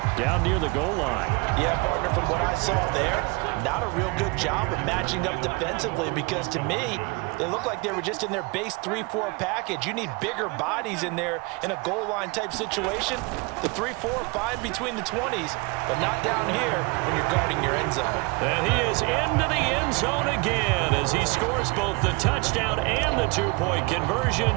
down near the goal line. Yeah, partner, from what I saw there, not a real good job of matching up defensively because to me, they look like they were just in their base 3-4 package. You need bigger bodies in there in a goal line type situation. The 3-4, fine between the 20s, but not down here when you're guarding your end zone. And he is into the end zone again as he scores both the touchdown and the 2-point conversion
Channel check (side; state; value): left; quieter; 27.7 dB